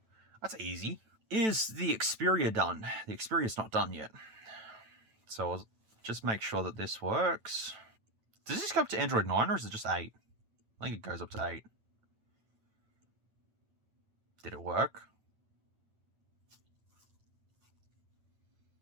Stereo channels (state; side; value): late; left; 9.1 ms